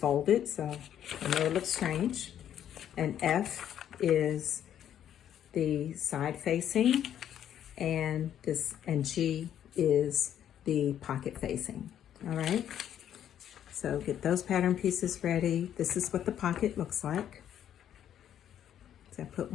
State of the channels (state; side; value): quieter; right; 10.3 dB